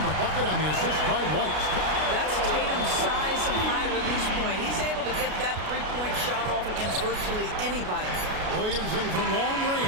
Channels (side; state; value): left; late; 33 ms